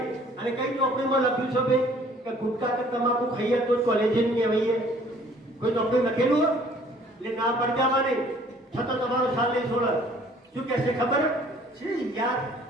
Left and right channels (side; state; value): both; normal; correlation 0.56